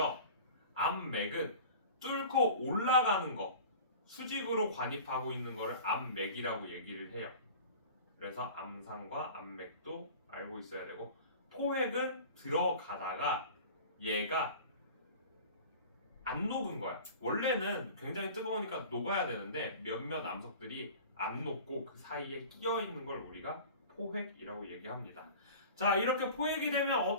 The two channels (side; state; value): both; inverted; correlation -0.39